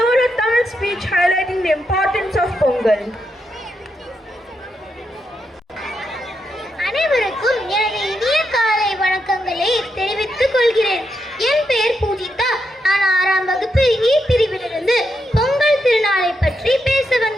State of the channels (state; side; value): normal; both; correlation 0.83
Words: a Tamil speech highlighting the importance of Pongal. அனைவருக்கும் எனது இனிய காலை வணக்கங்களை தெரிவித்துக் கொள்கிறேன். என் பெயர் பூஜிதா. நான் 6ஆம் வகுப்பு இ பிரிவிலிருந்து பொங்கல் திருநாளை பற்றி பேச